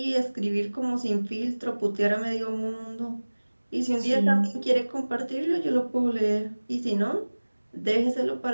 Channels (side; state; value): both; inverted; correlation -1.00